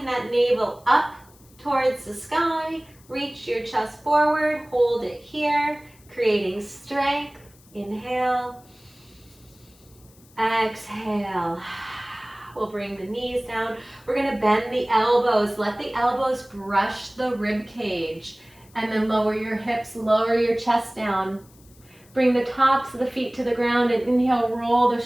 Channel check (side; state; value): left; noise; hiss, 28 dB below the sound